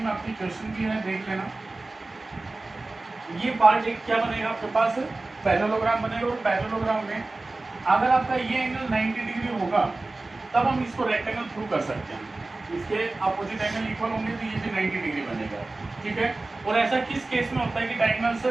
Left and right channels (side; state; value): left; quieter; 3.1 dB